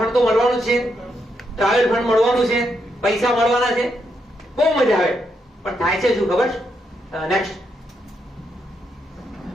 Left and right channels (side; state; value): both; normal; correlation 0.80